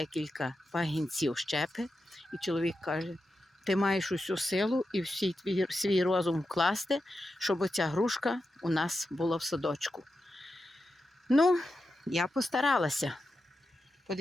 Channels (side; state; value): both; normal; correlation 0.89